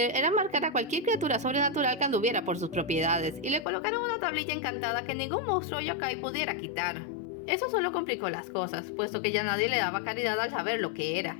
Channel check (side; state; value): right; drops out; at 3.7 s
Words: eran marcar a cualquier criatura sobrenatural que anduviera por sus propiedades, y le colocaron una tablilla encantada que ningún monstruo yokai pudiera quitar. Eso solo complicó las cosas, puesto que ya nadie le daba caridad al saber lo que era,